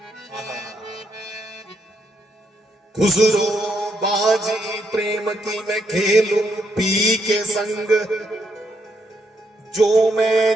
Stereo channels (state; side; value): normal; both; correlation 0.76